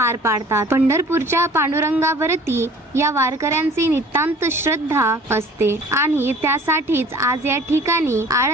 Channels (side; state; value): both; normal; correlation 0.48